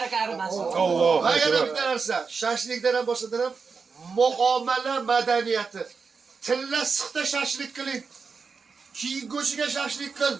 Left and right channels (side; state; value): left; quieter; 5.1 dB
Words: arimasin. Va yana bitta narsa, shashlikdan ham boshqadan ham muomala madaniyati. Tilla siqda shashlik qiling. Keyin go'shiga shashlik qil.